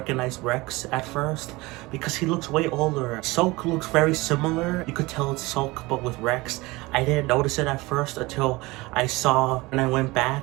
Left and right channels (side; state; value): left; quieter; 22.1 dB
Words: Rex at first because he looks way older. Sulk looks very similar. You could tell it's Sulk but with Rex. I didn't notice it at first until I saw when I went